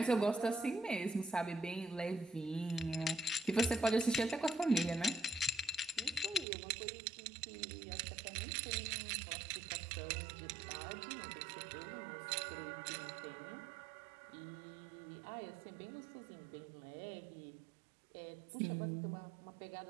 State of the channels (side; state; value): left; drops out; at 6.5 s